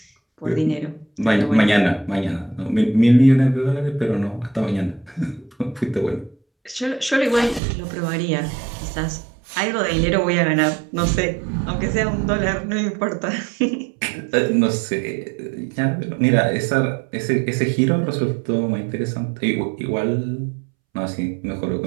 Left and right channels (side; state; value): left; drops out; at 7.6 s